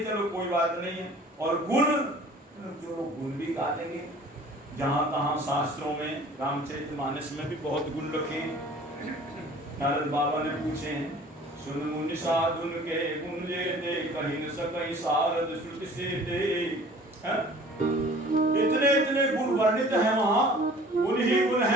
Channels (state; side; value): normal; both; correlation 0.48